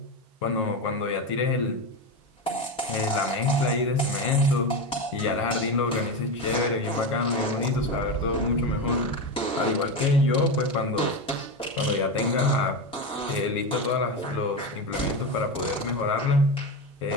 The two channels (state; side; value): normal; both; correlation 0.17